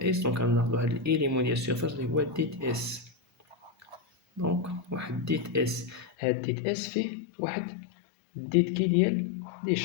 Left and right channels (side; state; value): right; drops out; at 6.1 s